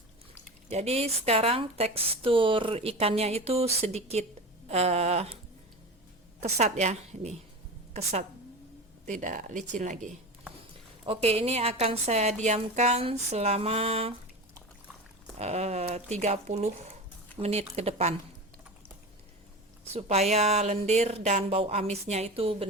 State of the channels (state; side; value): normal; both; correlation 0.28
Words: Jadi sekarang tekstur ikannya itu sedikit kesat ya, ini kesat, tidak licin lagi. Oke, ini akan saya diamkan selama 30 menit ke depan supaya lendir dan bau amisnya itu